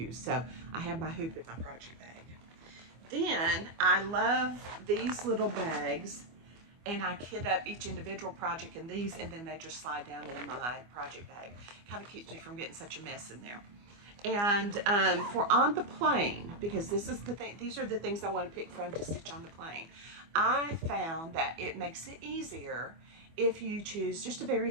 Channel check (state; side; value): late; left; 25 ms